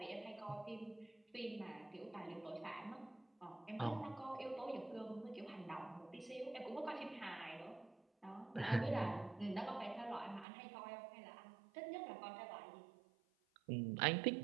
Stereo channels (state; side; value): drops out; left; at 10.5 s